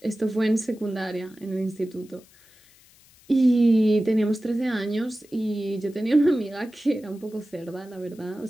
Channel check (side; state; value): left; noise; hiss, 27 dB below the sound